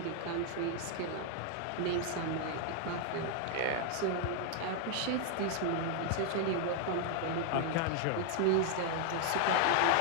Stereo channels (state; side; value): different; both; correlation 0.00